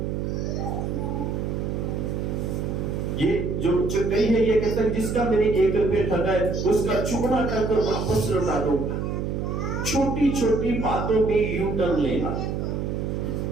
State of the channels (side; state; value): right; noise; hum, 2 dB below the sound